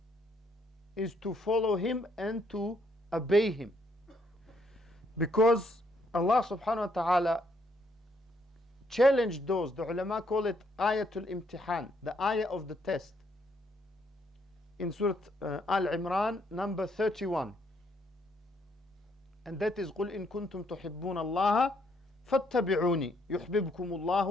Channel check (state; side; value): normal; both; correlation 0.71